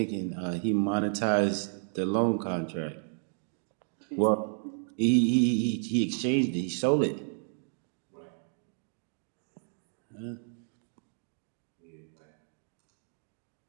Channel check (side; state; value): left; silent; digital silence